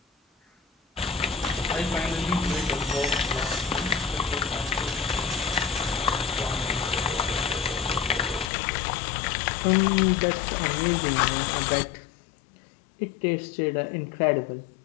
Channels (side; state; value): right; drops out; at 8.5 s